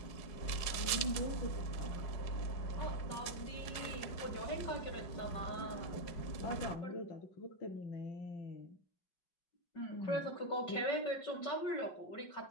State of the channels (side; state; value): right; late; 5.5 ms